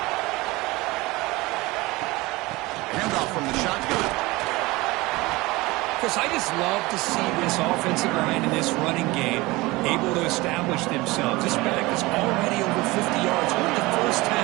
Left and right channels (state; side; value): quieter; left; 21.5 dB